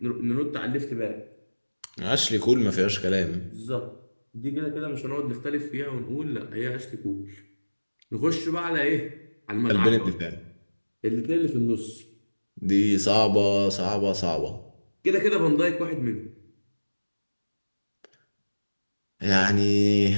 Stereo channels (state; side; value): inverted; both; correlation -1.00